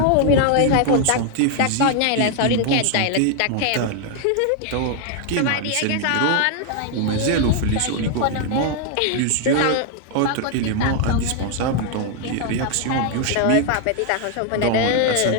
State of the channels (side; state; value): both; different; correlation 0.00